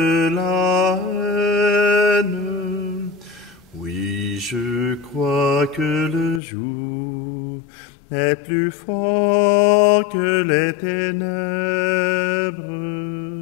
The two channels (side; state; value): right; drops out; at 6.4 s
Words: la haine. Oui, je crois que le jour est plus fort que les ténèbres.